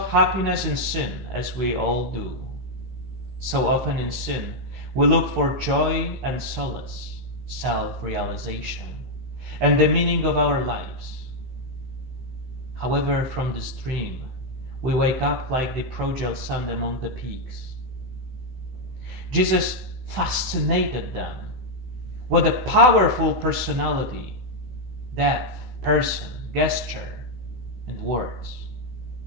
happiness in sin, as we all do. So often in sin, we look for joy and solace, self-realization, and the meaning of our lives. However, from this dream, we wake up like the prodigal son among the pigs. Jesus fascinated them. What a powerful personality, depth, person, gesture, and words.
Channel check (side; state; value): left; late; 16 ms